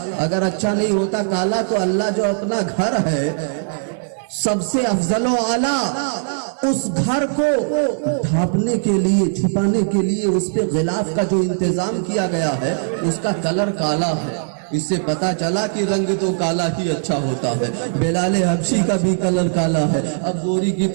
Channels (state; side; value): silent; left; digital silence